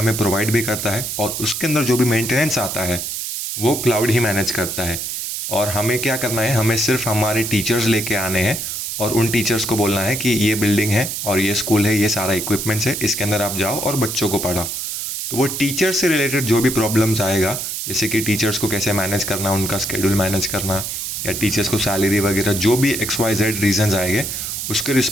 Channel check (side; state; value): right; noise; hiss, 4 dB below the sound